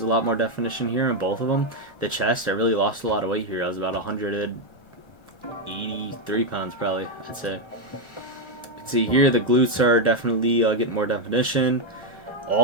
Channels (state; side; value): late; right; 1.2 ms